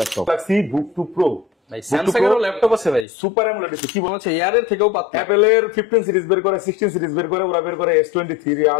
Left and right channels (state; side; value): drops out; right; at 3.1 s